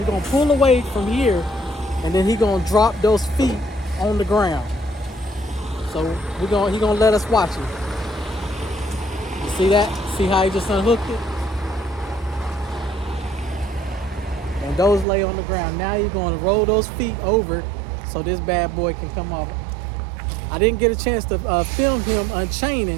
gonna pull away from here, and then he gonna drop those feet on the ground. So he gonna let us watch it. You see that? See how he just unhooked it? And those lay on the ground. Now you're gonna roll those feet over so this bad boy can come off. I didn't get a chance to film him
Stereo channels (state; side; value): drops out; left; at 15.1 s